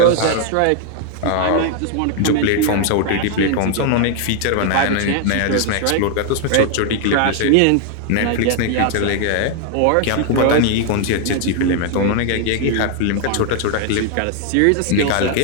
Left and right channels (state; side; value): different; both; correlation 0.00